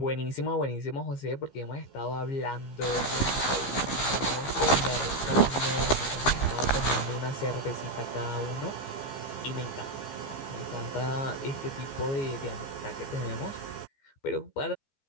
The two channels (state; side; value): late; right; 15 ms